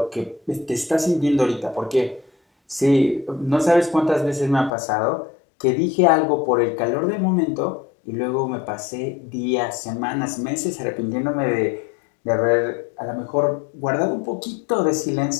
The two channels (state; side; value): drops out; right; at 4.7 s